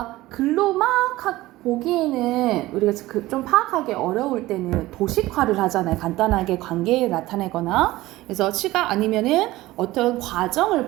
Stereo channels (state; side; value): quieter; left; 17.7 dB